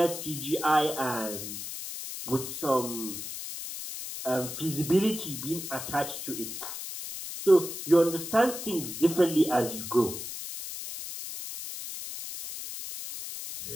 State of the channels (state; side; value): noise; left; hiss, 8 dB below the sound